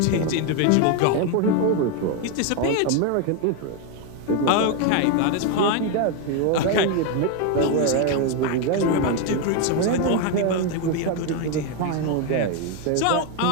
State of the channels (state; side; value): different; both; correlation 0.01